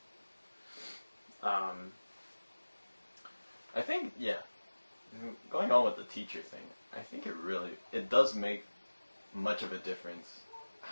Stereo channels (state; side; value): inverted; both; correlation -1.00